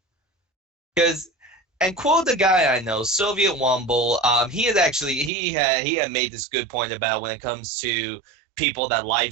Because, and quote the guy I know, Soviet Wumble, he had made this good point about when it comes to people that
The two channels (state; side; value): drops out; left; at 5.3 s